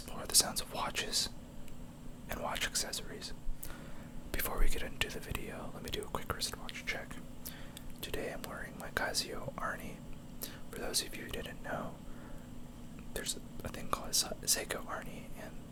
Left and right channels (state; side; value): identical; both; correlation 1.00